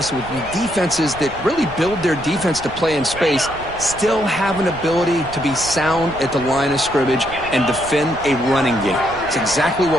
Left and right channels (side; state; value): right; noise; rumble, 16 dB below the sound